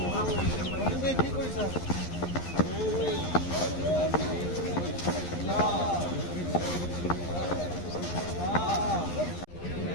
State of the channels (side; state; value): right; late; 11 ms